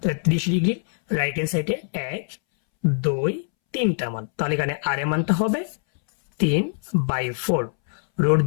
30 ডিগ্রির রাইট হ্যান্ড সাইডে 1 2 3টা মান, তাহলে এখানে r এর মানটা হবে 3/4। রুট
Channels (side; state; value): right; silent; 63 dB below the other